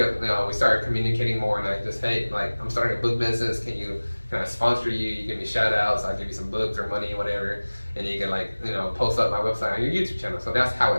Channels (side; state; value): both; inverted; correlation -1.00